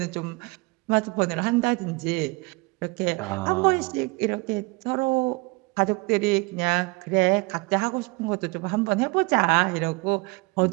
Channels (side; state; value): left; quieter; 26.5 dB